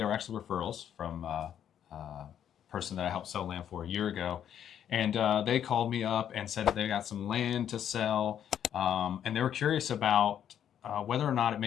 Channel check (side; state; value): right; quieter; 9.6 dB